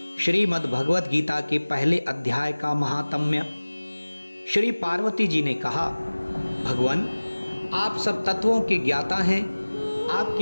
श्रीमद् भगवद गीता के पहले अध्याय का महात्म्य। श्री पार्वती जी ने कहा, भगवान आप सब तत्वों के ज्ञाता हैं।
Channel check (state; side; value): inverted; both; correlation -1.00